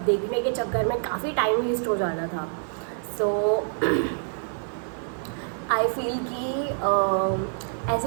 देखने के चक्कर में काफ़ी टाइम वेस्ट हो जाता था। सो आई फील कि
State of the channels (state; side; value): silent; left; 61 dB below the other